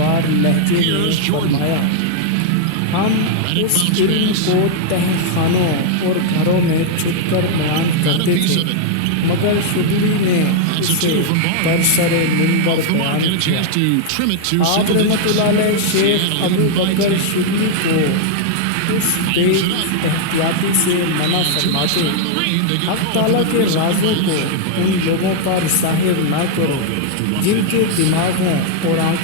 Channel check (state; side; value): different; both; correlation 0.00